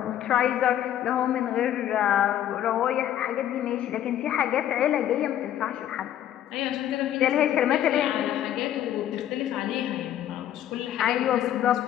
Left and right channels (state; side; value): quieter; right; 11.5 dB